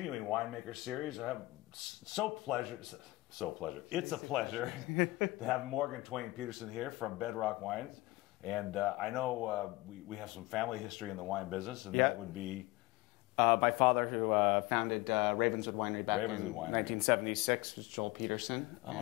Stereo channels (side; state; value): right; quieter; 20.5 dB